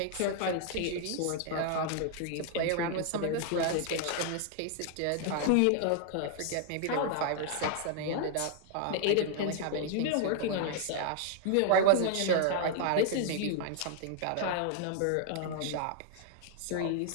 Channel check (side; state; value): both; different; correlation 0.00